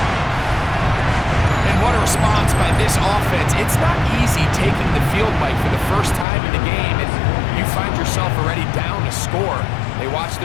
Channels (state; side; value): drops out; right; at 6.2 s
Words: And what a response by this offense. It's not easy taking the field, Mike, for the first time in the game, and you find yourself already down to score. They watch